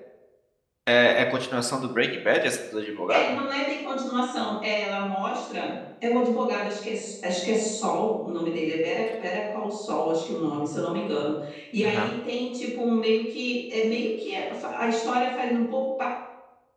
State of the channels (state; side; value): identical; both; correlation 1.00